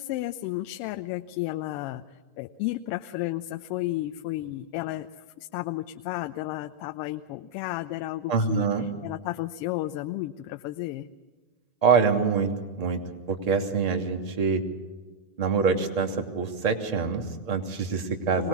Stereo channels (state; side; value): late; right; 1.8 ms